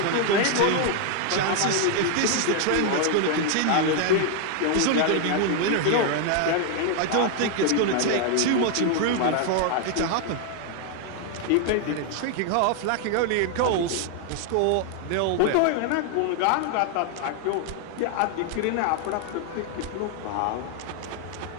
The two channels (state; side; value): different; both; correlation 0.00